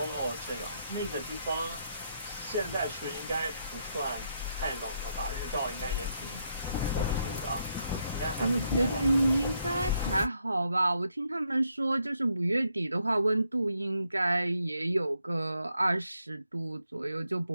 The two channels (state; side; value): inverted; both; correlation -0.77